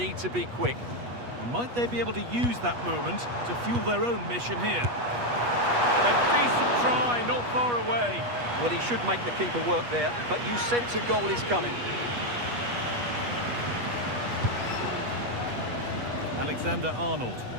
to be quick. Might they be able to use that moment to fuel their own mission here? A decent try, not far away. Well, he should make the keeper work there, but you sense a goal is coming. Alexander-Arnold.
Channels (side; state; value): left; late; 8.3 ms